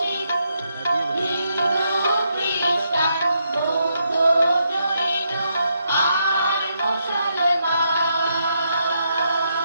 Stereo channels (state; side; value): inverted; both; correlation -0.79